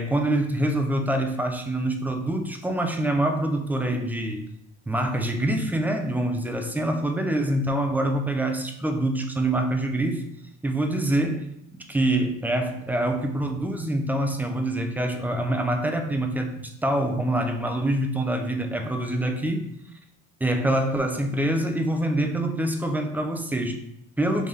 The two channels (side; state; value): both; normal; correlation 0.70